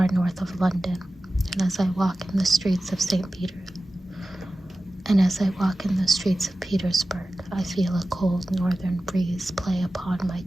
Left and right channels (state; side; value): normal; both; correlation 0.95